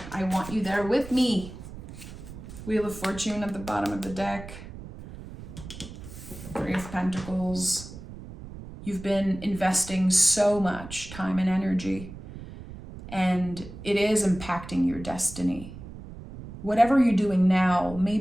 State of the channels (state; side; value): noise; right; rumble, 13 dB below the sound